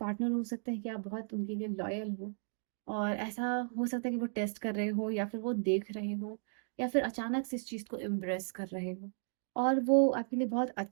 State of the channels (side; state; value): left; silent; digital silence